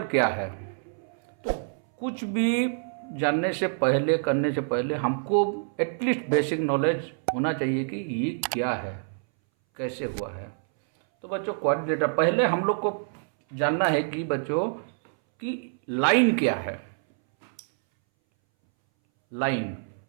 क्या है। तो कुछ भी जानने से पहले, करने से पहले हमको एटलीस्ट बेसिक नॉलेज होना चाहिए कि ये क्या है, कैसे हुआ है। तो बच्चों, क्वाड्रिलेटरल पहले हम लोग को जानना है कि बच्चों कि लाइन क्या है। लाइन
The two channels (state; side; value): silent; left; 60 dB below the other